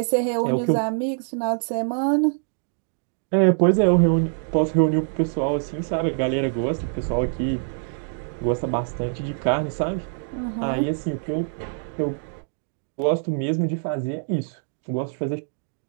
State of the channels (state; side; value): silent; left; 59 dB below the other